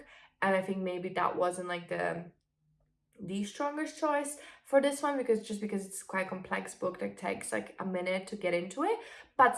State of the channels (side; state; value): both; identical; correlation 1.00